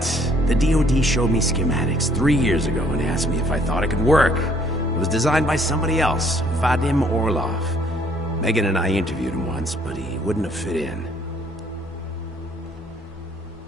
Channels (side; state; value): both; normal; correlation 0.63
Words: The DoD showed me schematics 3 years ago and asked me if I thought it could work. was designed by somebody else, Vadim Orlov. Megan and I interviewed him once, but he wouldn't have fit in.